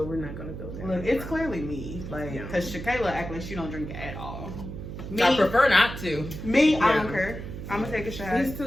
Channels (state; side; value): noise; right; hum, 9 dB below the sound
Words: we're not going to go there. Look, it's clearly me. Like, because Shakayla act like she don't drink at all. Me, I prefer not to. I don't care. I'm going to take a shot. These